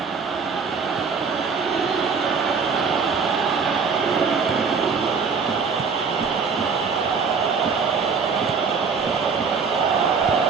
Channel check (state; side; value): quieter; left; 5.4 dB